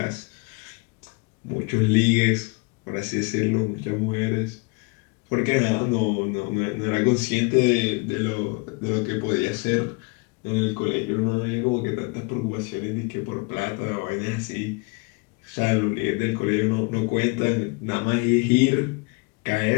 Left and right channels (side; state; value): right; quieter; 29.2 dB